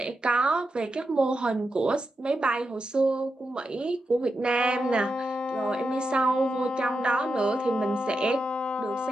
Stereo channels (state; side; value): normal; both; correlation 0.87